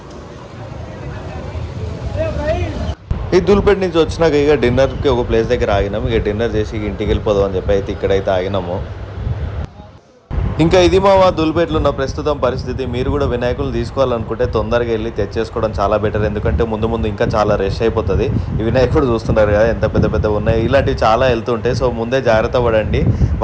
ఈ ధూల్పేట నుంచి వచ్చినాక ఇక డిన్నర్కి ఒక ప్లేస్ దగ్గర ఆగినాము. ఇక డిన్నర్ చేసి ఇంటికి వెళ్ళిపోదాం అని చెప్పి అయితే ఇక్కడైతే ఆగినాము. ఇంకా ఇది మా ధూల్పేటలో ఉన్న ప్రస్తుతం పరిస్థితి. మీరు కూడా వినాయకులు తీసుకోవాలనుకుంటే తొందరగా వెళ్ళి తెచ్చేసుకోవడం చాలా బెటర్. ఎందుకంటే ముందు ఇంకా చాలా రష్ అయిపోతుంది. ఈ వినాయకుడు చూస్తున్నారు కదా ఎంత పెద్ద ఉన్నాయి. ఇలాంటివి చాలా వెళ్తుంటాయి. సో ముందే జాగ్రత్త పడండి.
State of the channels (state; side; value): identical; both; correlation 1.00